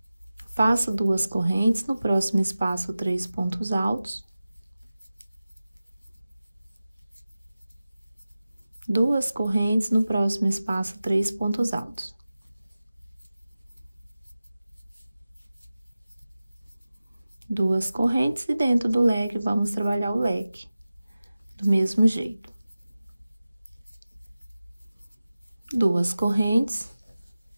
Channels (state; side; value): inverted; both; correlation -0.96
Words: Faço duas correntes. No próximo espaço, 3 pontos altos. Duas correntes, no próximo espaço, 3 pontos altos. Duas correntes, e dentro do leque, vamos trabalhar o leque do mesmo jeito. Duas correntes